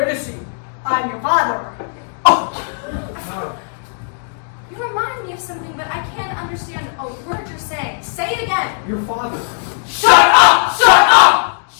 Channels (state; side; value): silent; right; 62 dB below the other